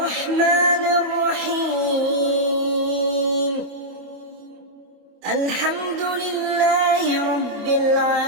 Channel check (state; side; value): late; left; 25 ms